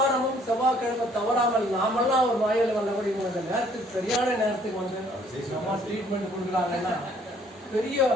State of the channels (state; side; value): normal; both; correlation 0.61